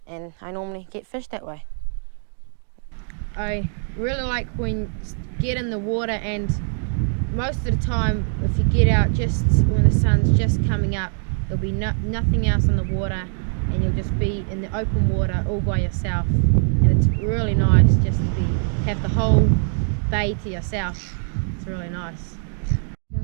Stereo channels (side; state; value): left; silent; 64 dB below the other